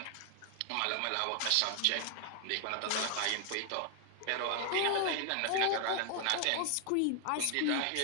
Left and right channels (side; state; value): both; different; correlation 0.00